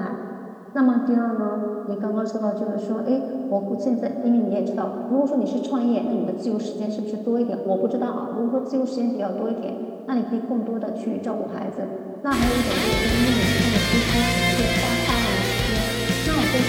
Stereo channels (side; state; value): both; identical; correlation 1.00